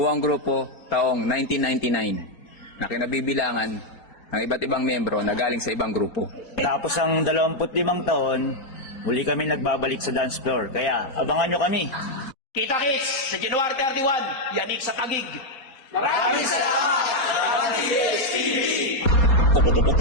grupo taong 1999 na kinabibilangan ng iba't ibang miyembro na galing sa ibang grupo. Tapos ang 25 taon, muli kami nagbabalik sa dance floor. Kaya abangan nyo kami. Kita-kits sa January 31, yanig sa Tagig.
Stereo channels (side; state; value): right; late; 4.4 ms